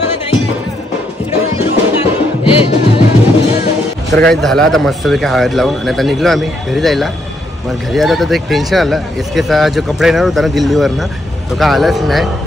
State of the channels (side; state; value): both; normal; correlation 0.76